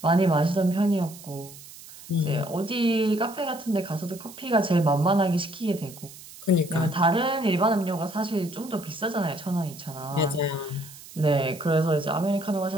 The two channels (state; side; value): noise; right; hiss, 17 dB below the sound